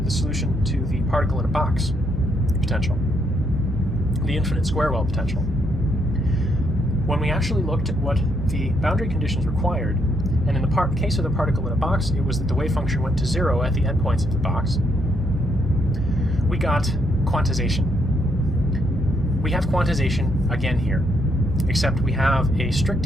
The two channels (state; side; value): normal; both; correlation 0.74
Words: the solution to the particle in a box potential, the infinite square well potential. When we actually looked at what the boundary conditions required, and in the case of the particle in a box, it was that the wave function went to 0 at the endpoints of the box, we got quantization. We have quantization again here, except we have a strict